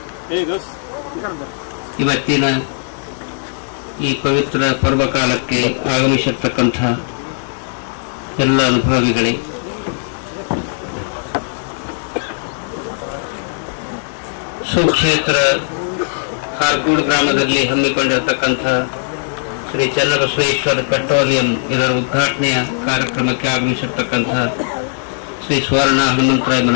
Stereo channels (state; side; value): silent; right; digital silence